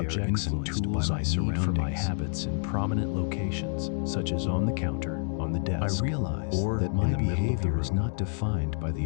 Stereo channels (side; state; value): right; silent; 59 dB below the other